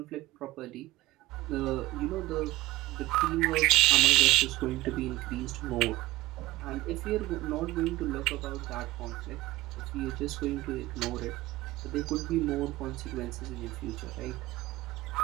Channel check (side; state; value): left; quieter; 18.4 dB